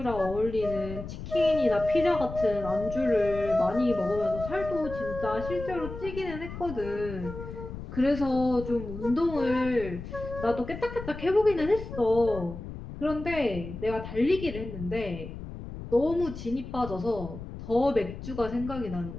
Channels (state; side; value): noise; left; rumble, 10 dB below the sound